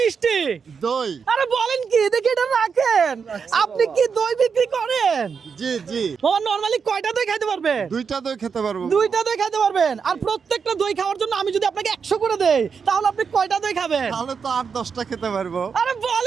দই। আরে বলেন কি, দেখি এটা রাখেন। আপনি কি দই বিক্রি করেন? জি জি। মামা নরমালি কয়টা দই খাইতে পারবে? দুইটা দই খেতে পারবো। দুইটা দই খাইতে পারবেন। আর প্রত্যেকটা দই খাওয়ার জন্য আমি যদি আপনাকে 100 করে দেই, তাহলে আপনি কয়টা দই খাবেন? তাহলে তো 8-10টা খেতে পারবো। আরে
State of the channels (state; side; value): quieter; left; 6.0 dB